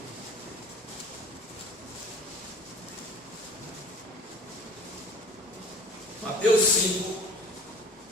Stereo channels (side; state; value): both; normal; correlation 0.46